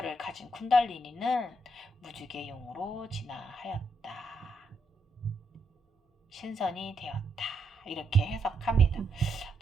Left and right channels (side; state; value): both; normal; correlation 0.79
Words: 가진 쿤달리니는 무지개 용으로 진화하였다. 신선이 되었다. 이렇게 해석합니다.